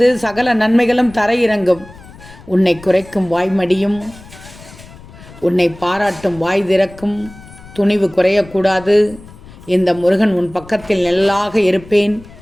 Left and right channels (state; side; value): noise; left; rumble, 20 dB below the sound